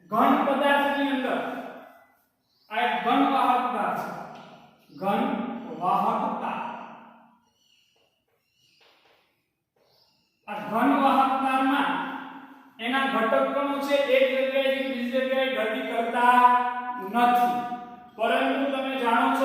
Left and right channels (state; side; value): identical; both; correlation 1.00